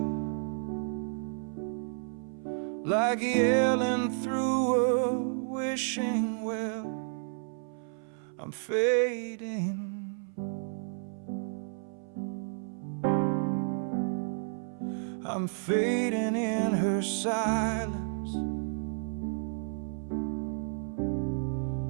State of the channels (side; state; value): left; silent; 57 dB below the other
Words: like yelling through a wishing well. I'm fading, I'm fading in her silence,